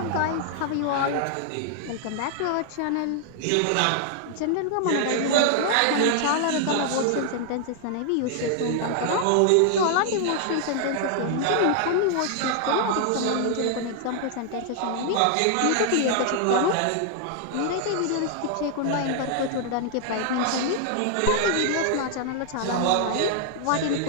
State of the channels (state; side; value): different; both; correlation 0.00